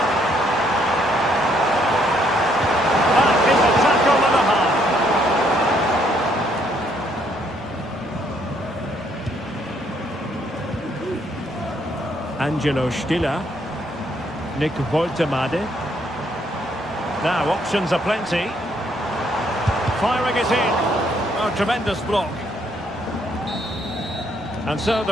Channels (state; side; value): normal; both; correlation 0.69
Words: That is a tackle and a half. Angelo Stiller. Nick Woltemade. Now options are plenty. Firing it in. Oh, tremendous block. And so